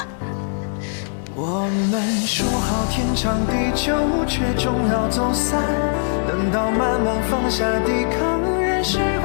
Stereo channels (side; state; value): right; silent; digital silence